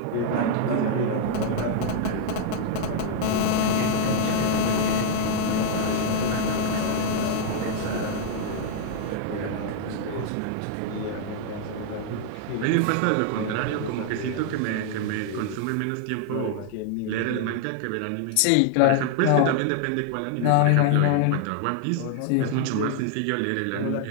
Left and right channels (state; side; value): different; both; correlation 0.00